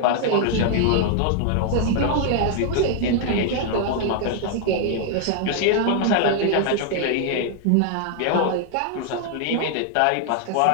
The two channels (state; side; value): different; both; correlation 0.00